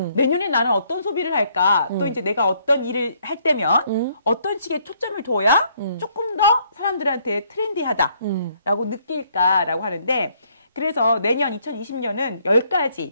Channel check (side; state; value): both; inverted; correlation -0.67